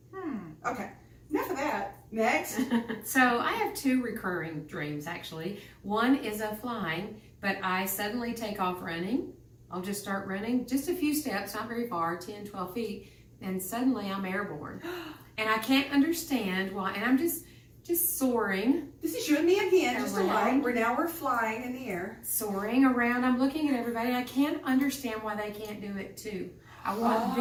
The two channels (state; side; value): identical; both; correlation 1.00